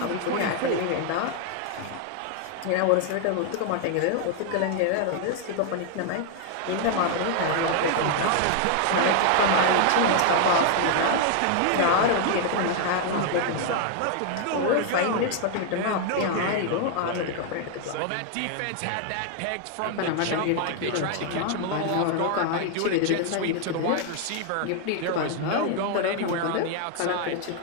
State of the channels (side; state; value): both; different; correlation 0.00